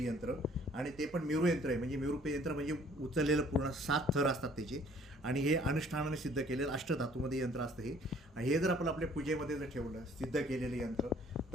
आणि ते पण मेरू यंत्र आहे, म्हणजे मेरू यंत्र म्हणजे उचललेलं पूर्ण 7 थर असतात त्याचे. आणि हे अनुष्ठानाने सिद्ध केलेलं अष्टधातूमध्ये यंत्र असतं हे. आणि हे जर आपण आपल्या पूजेमध्ये जर ठेवलं सिद्ध केलेलं यंत्र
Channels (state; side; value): normal; both; correlation 0.57